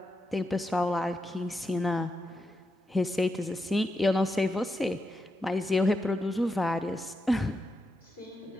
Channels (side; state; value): both; normal; correlation 0.86